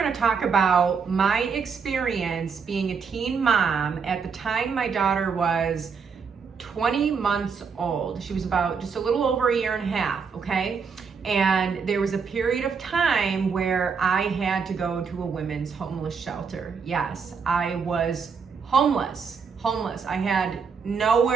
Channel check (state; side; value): quieter; left; 5.8 dB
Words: to talk about my experience being a teen mom. At the time, my daughter was 20 months old. She was about just a little over a year and a half, okay? And there was a period of time where I had to go to a women's homeless shelter. Yes, I was homeless. I had